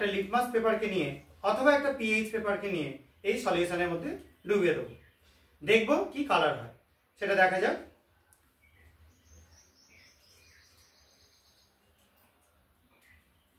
লিটমাস পেপারকে নিয়ে অথবা একটা পিএইচ পেপারকে নিয়ে এই সলিউশনের মধ্যে ডুবিয়ে দেবো, দেখব কি কালার হয় সেটা দেখা যাক।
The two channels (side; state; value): both; identical; correlation 1.00